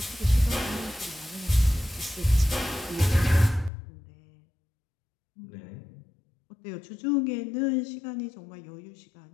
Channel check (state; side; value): drops out; right; at 3.7 s